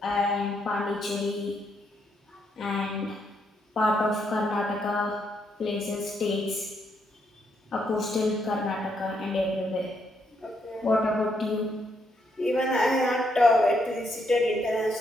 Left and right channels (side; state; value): both; normal; correlation 0.76